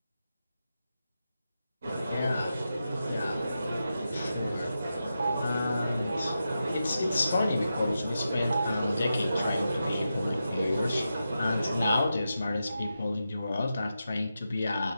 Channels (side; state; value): both; inverted; correlation -0.89